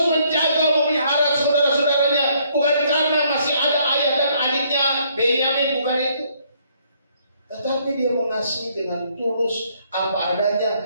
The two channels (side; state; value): both; inverted; correlation -0.67